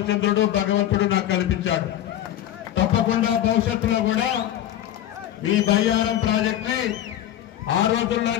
భగవంతుడు నాకు కల్పించాడు. తప్పకుండా భవిష్యత్తులో కూడా ఈ బయ్యారం ప్రాజెక్ట్ ని ఆ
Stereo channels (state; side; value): quieter; right; 12.0 dB